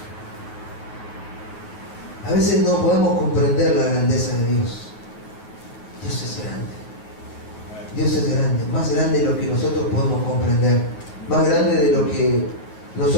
A veces no podemos comprender la grandeza de Dios. Dios es grande. Dios es grande, más grande de lo que nosotros podemos comprender, más grande de lo que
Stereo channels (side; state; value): right; late; 9.2 ms